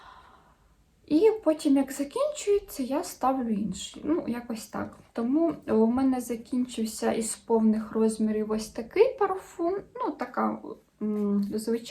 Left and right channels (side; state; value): both; identical; correlation 1.00